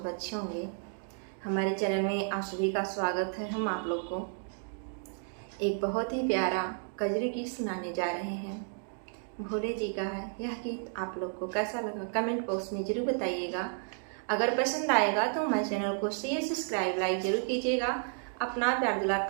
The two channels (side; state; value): left; silent; 56 dB below the other